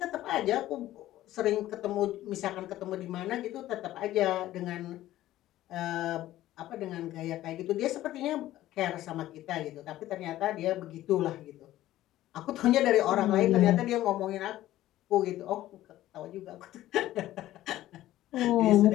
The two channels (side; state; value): right; quieter; 14.5 dB